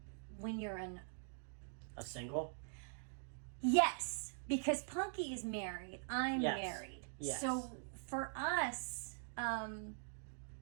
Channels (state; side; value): silent; left; digital silence